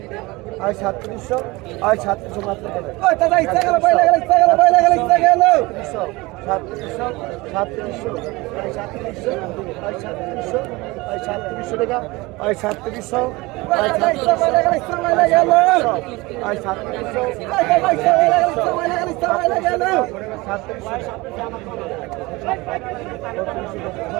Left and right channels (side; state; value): left; quieter; 22.5 dB